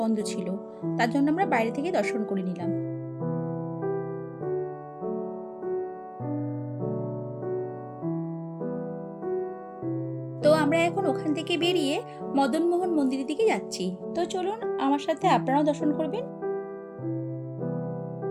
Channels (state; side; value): identical; both; correlation 1.00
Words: ছিল, তার জন্য আমরা বাইরে থেকে দর্শন করে নিলাম। তো আমরা এখন ওখান থেকে বেরিয়ে মদনমোহন মন্দিরের দিকে যাচ্ছি। তো চলুন আমার সাথে আপনারাও দর্শন করবেন।